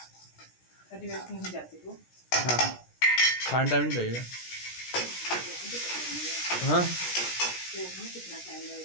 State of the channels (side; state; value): right; late; 17 ms